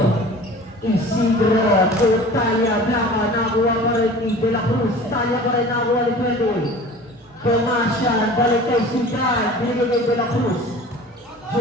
Isidro, Talia, Blanca, nakuha pa rin ni De La Cruz. Talia pa rin nakuha ni Pedro. Damasya, balik kay Sudan, binigay kay De La Cruz.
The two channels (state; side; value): normal; both; correlation 0.41